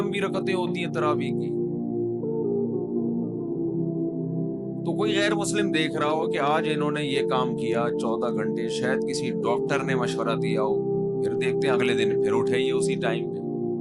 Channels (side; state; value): both; identical; correlation 1.00